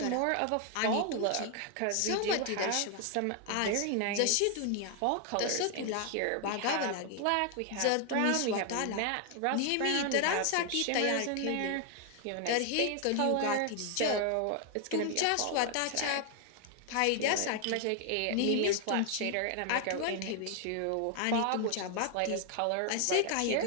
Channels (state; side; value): different; both; correlation 0.00